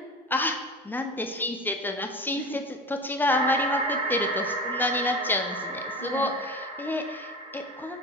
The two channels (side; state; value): both; normal; correlation 0.30